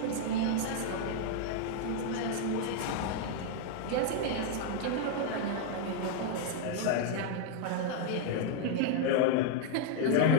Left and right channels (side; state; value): both; different; correlation 0.00